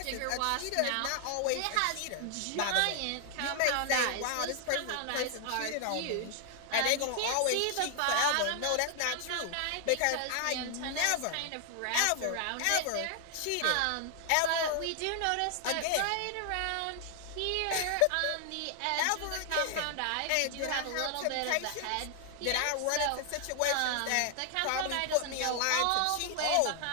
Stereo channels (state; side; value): different; both; correlation 0.00